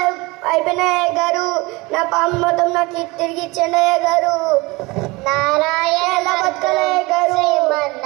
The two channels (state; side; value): quieter; left; 23.7 dB